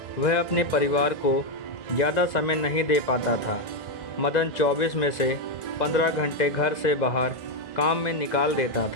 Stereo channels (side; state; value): right; late; 2.0 ms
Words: वह अपने परिवार को ज़्यादा समय नहीं दे पाता था। मदन 24 में से 15 घंटे घर से बाहर काम में निकाल देता